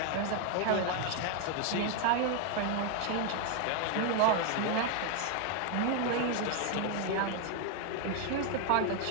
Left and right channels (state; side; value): different; both; correlation 0.01